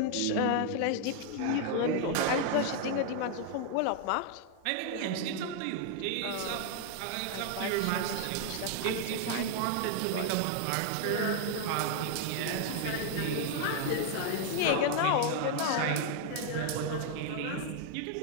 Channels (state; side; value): different; both; correlation 0.00